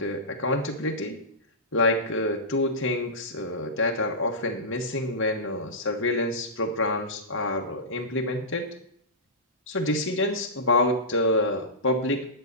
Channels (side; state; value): both; normal; correlation -0.17